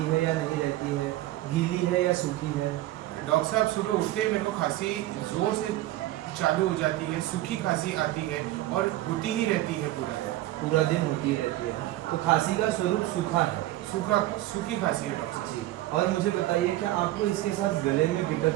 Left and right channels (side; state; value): left; quieter; 16.0 dB